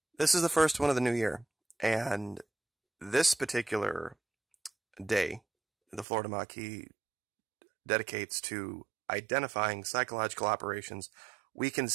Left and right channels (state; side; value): drops out; left; at 6.1 s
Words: This is the first one of the new year, and this particular day, the Florida Maki dedicates to identifying psychological operations we can